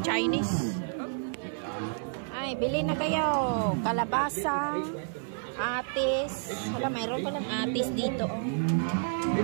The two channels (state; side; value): silent; left; 58 dB below the other